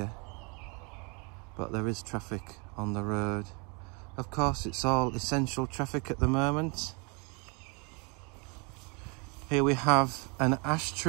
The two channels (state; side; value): quieter; left; 33.0 dB